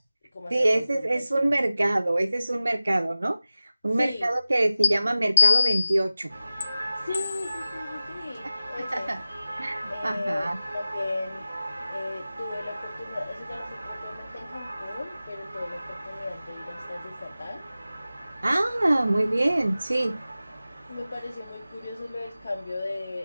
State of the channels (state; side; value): inverted; both; correlation -0.96